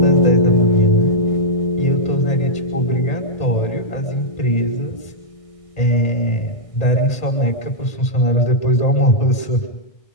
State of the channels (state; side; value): late; right; 1.8 ms